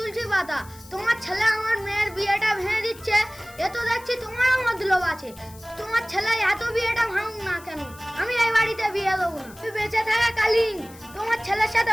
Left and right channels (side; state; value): left; noise; hiss, 21 dB below the sound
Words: পাতা। তোমার ছেলে আমার মেয়ের বিয়েটা ভেঙে দিচ্ছে, এ তো দেখছি তোমারও মতলব আছে। তোমার ছেলে এত বিয়েটা ভাঙুক না কেন, আমি এই বাড়িতে বিয়ে দেবো না। তুই বেঁচে থাকাকালীন তোমার ছেলের